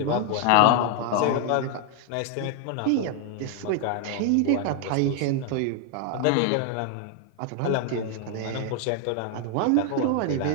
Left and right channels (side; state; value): both; different; correlation 0.00